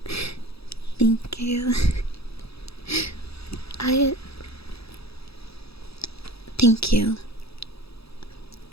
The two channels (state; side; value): late; right; 0.77 ms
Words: Thank you. Thank you.